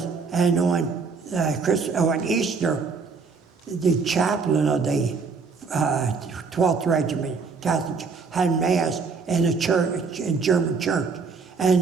and on Easter, the chaplain of the 12th Regiment Catholic had Mass in a church, in German church,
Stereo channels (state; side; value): quieter; left; 4.9 dB